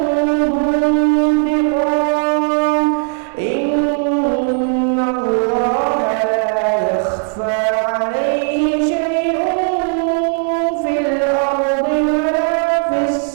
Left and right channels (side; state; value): left; silent; 56 dB below the other